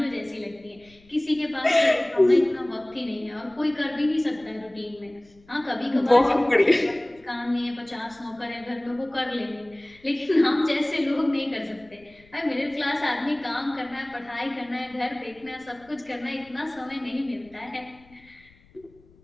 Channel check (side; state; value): left; noise; rumble, 28 dB below the sound